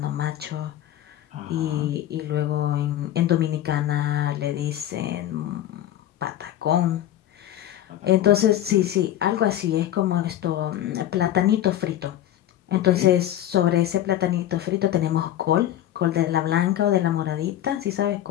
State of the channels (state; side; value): quieter; right; 12.4 dB